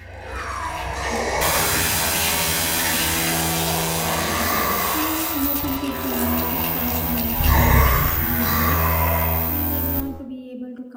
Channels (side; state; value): both; identical; correlation 1.00